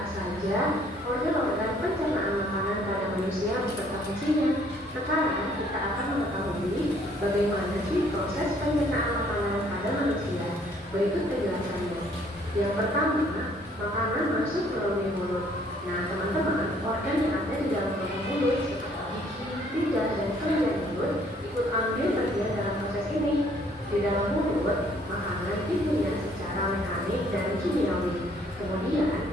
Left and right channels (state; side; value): normal; both; correlation 0.62